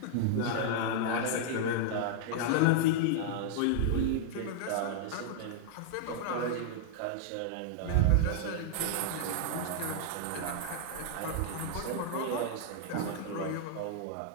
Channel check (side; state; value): both; different; correlation -0.01